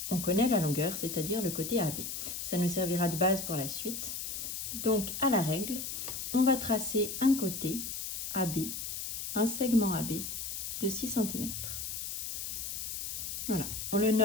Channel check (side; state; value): left; noise; hiss, 5 dB below the sound